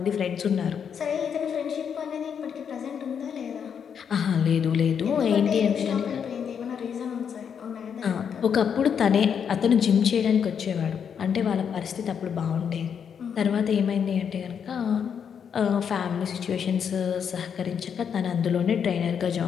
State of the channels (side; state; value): right; quieter; 7.5 dB